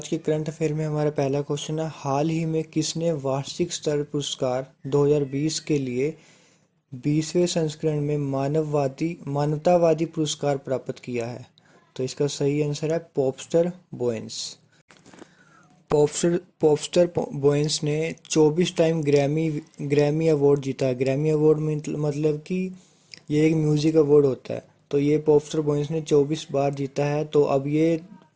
के करंट अफेयर में हमारा पहला क्वेश्चन है, हाल ही में किसने वार्षिक स्तर पुरस्कार 2020 के लिए 20वें संस्करण में मानवतावादी पुरस्कार प्राप्त किया है? तो इसका सही आंसर है पॉपस्टर बोयंस। पॉपस्टर बोयंस ने 24 टाइम ग्रैमी अवार्ड जीता है। ग्रैमी अवार्ड मतलब कि ये एक म्यूजिक अवार्ड होता है। तो ये पॉपस्टर बोयंस ने 24 बार जीता है। तो अब ये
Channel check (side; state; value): both; identical; correlation 1.00